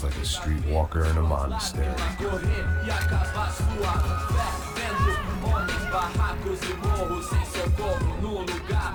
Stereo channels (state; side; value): identical; both; correlation 1.00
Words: like a streetwalker in a monastery.